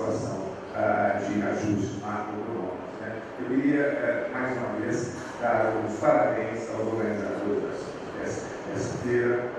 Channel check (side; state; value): both; identical; correlation 1.00